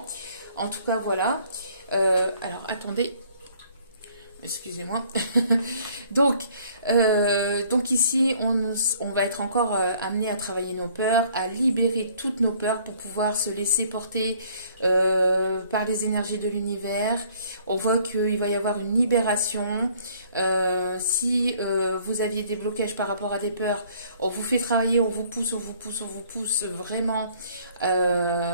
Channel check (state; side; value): inverted; both; correlation -0.59